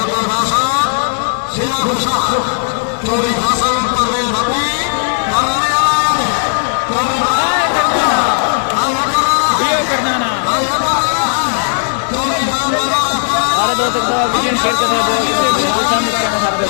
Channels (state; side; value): silent; right; digital silence